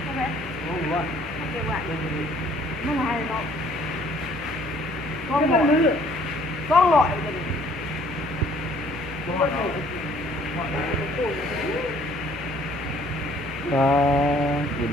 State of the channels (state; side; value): normal; both; correlation 0.59